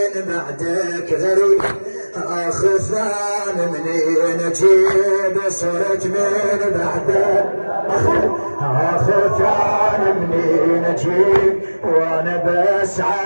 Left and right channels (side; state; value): both; inverted; correlation -1.00